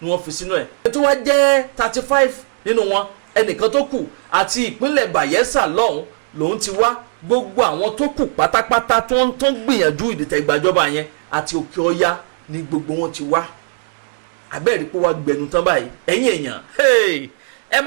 wọ́n fi sínú ẹ̀. Ètò wa jẹ́ 35 nínú wọn ẹnìkan tó kù àti ìpínlẹ̀ Bayelsa lọ́hùn lòun ti wá. Gbogbo àwọn tó kù pátápátá tó ń gbìyànjú ìdìtẹ̀gbàjọba yẹn àti òkè ọya ni gbogbo wọn ti wá. Àbẹ́ẹ̀rí pé wá gbẹnu tán báyìí ẹ̀yin èèyàn ẹ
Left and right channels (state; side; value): silent; left; digital silence